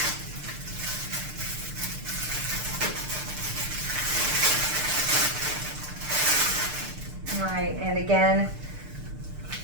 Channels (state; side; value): late; left; 6.6 ms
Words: Right, and again,